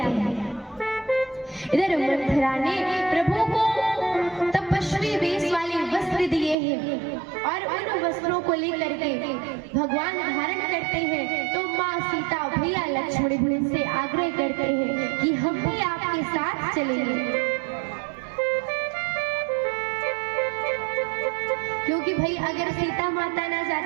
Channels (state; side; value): drops out; left; at 6.6 s